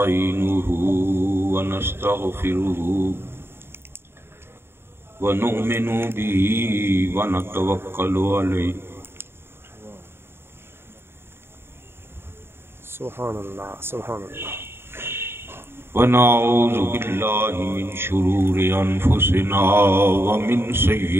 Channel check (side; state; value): left; late; 0.11 ms